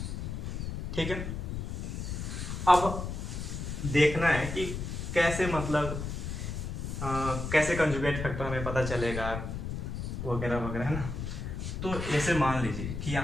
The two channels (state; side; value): noise; left; rumble, 5 dB below the sound